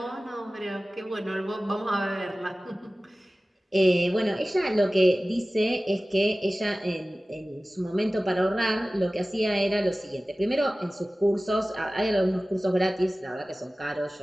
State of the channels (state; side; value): normal; both; correlation 0.97